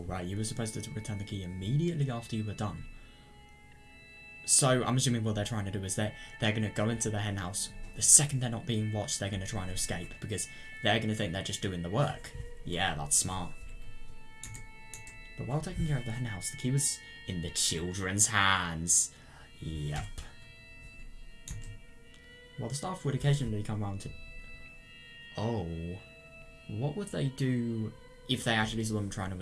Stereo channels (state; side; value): identical; both; correlation 1.00